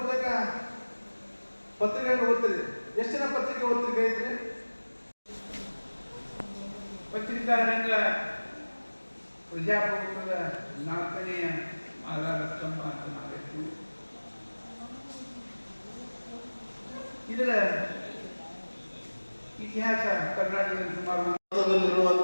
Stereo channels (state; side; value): inverted; both; correlation -1.00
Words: ಪತ್ರಿಕೆಯನ್ನು ಓದ್ತೀರಿ. ಎಷ್ಟು ಜನ ಪತ್ರಿಕೆ ಓದ್ತಿಗೆ ಐತ್ರಿ? ಪತ್ರಿಕಾ ರಂಗ ಪ್ರಜಾಪ್ರಭುತ್ವದ 4ನೆಯ ಆಧಾರ ಸ್ತಂಭ ಅಂತ ನಾವಿತ್ತು. ಇದರ ಇತಿಹಾಸ ಕರ್ನಾಟಕದಲ್ಲಿ ಸುಮಾರು